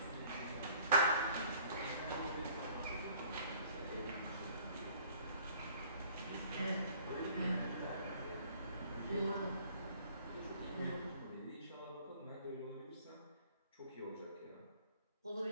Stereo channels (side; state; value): both; inverted; correlation -0.55